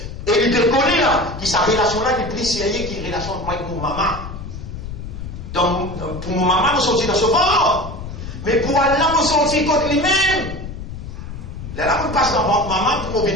Et il te connaît là, qui sa relation là, qui prie série, qui est relation avec mon maman. Donc, pour mon maman, nous sortis dans ce ventre. Mais pour Allah, nous sortis contre lui-même. Là, on passe dans votre maman pour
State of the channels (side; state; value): left; noise; rumble, 9 dB below the sound